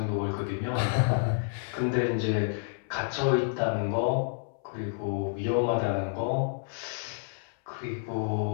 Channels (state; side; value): silent; right; 58 dB below the other